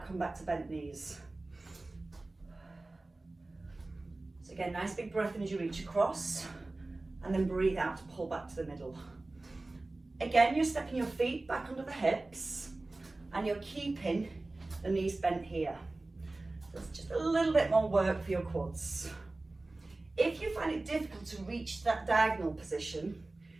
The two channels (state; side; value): quieter; left; 3.0 dB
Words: come back to bent knees. So again, nice big breath in as you reach across, and then breathe out to pull back to the middle. Again, you're stepping your feet back under the hips, and you're keeping the knees bent here. So it's just a little bit more work for your quads. If you find it difficult to reach that diagonal position,